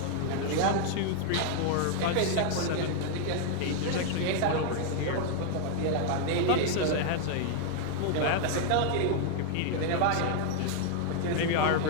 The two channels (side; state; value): both; different; correlation 0.00